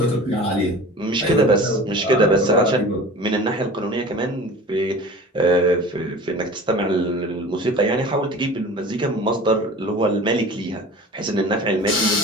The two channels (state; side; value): normal; both; correlation 0.39